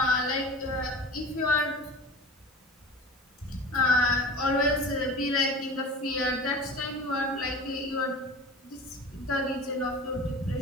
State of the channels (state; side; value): normal; both; correlation 0.36